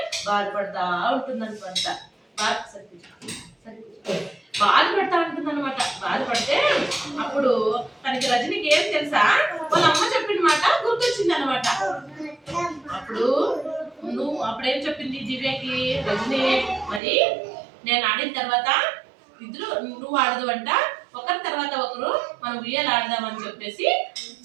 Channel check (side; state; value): left; drops out; at 17.0 s